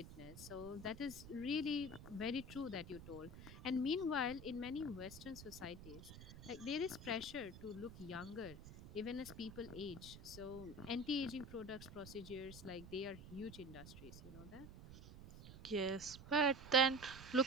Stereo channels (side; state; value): right; noise; rumble, 14 dB below the sound